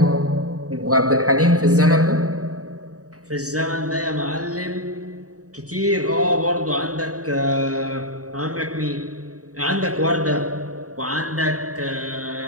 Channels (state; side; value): late; left; 0.66 ms